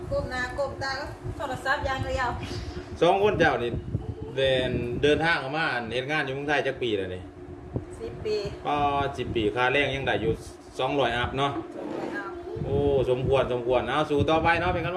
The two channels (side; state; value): both; identical; correlation 1.00